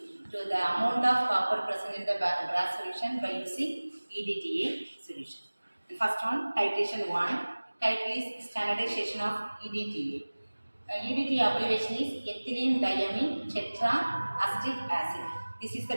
to the amount of copper present in the brass solution by using EDTA solution. The first one, titration 1. Title is standardization of EDTA. EDTA abbreviation is ethylene diamine tetraacetic acid. This is the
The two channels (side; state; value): both; inverted; correlation -1.00